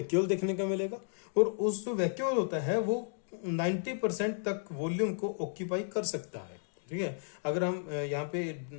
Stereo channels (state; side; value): silent; right; digital silence